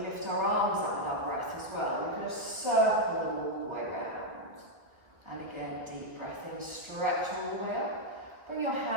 lift our arms up with our breath as well. We're going to circle them all the way around. And again, deep breath in, stretch all the way up. Bring your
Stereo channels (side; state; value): left; late; 1.1 ms